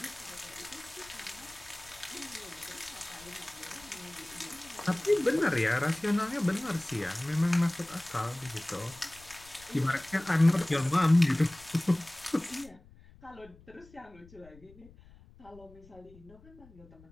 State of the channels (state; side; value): noise; left; rumble, 23 dB below the sound